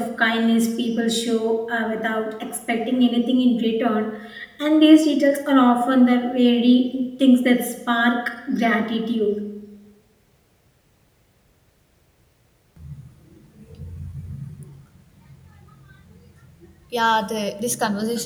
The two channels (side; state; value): both; identical; correlation 1.00